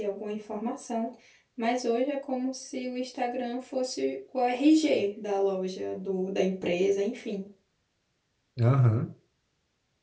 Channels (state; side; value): identical; both; correlation 1.00